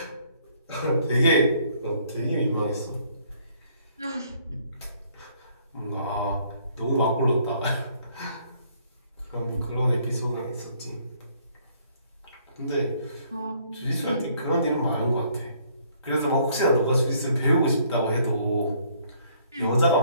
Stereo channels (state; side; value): inverted; both; correlation -0.64